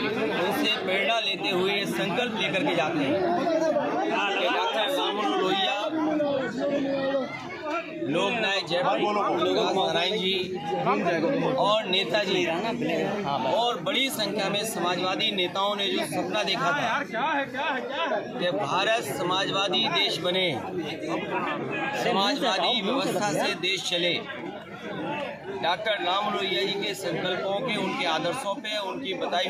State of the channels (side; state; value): both; identical; correlation 1.00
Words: प्रेरणा लेते हुए संकल्प लेकर के जाते हैं। डॉक्टर राम मनोहर लोहिया, लोकनायक जयप्रकाश नारायण जी और नेताजी और बड़ी संख्या में समाजवादी नेताओं ने जो सपना देखा था कि भारत समाजवादी देश बने, समाजवादी व्यवस्था से देश चले, डॉक्टर राम लोहिया जी के संकल्पों के, उनके आदर्शों पे, उनकी बताई